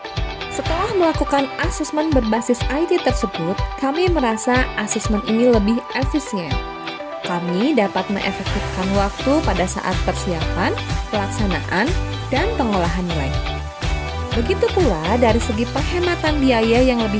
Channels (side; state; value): both; identical; correlation 1.00